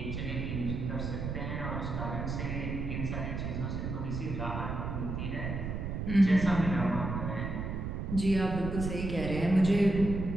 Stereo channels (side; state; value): right; noise; rumble, 4 dB below the sound